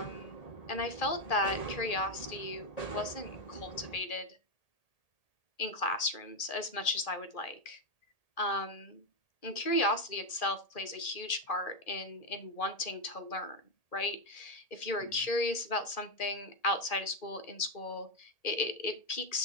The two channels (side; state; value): right; late; 1.8 ms